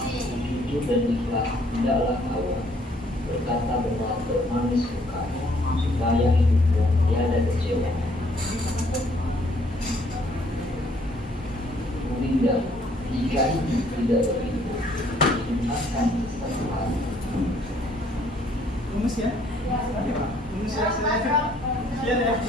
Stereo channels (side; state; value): both; normal; correlation 0.64